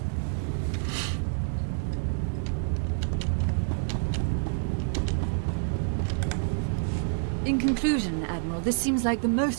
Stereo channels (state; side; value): silent; left; digital silence